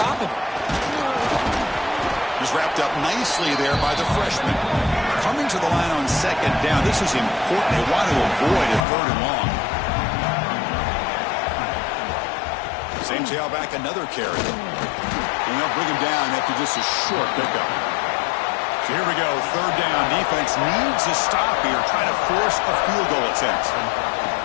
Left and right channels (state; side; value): drops out; right; at 8.8 s